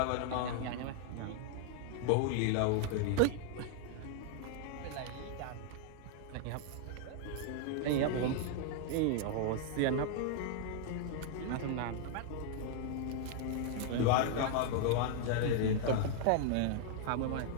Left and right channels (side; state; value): both; different; correlation 0.00